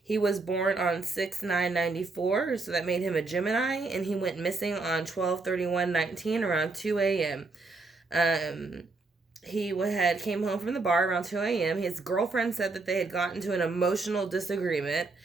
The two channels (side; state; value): left; quieter; 3.7 dB